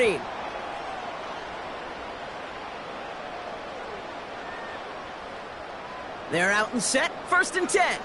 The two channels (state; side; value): identical; both; correlation 1.00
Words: They're out and set. 1st and 10.